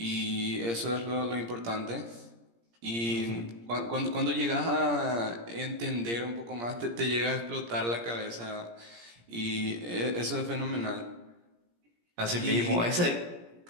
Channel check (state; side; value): late; left; 17 ms